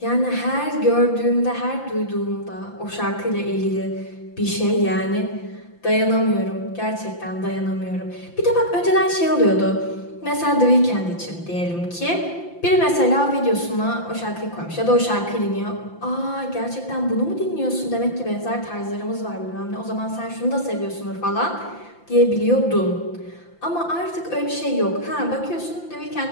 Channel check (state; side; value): late; right; 5.8 ms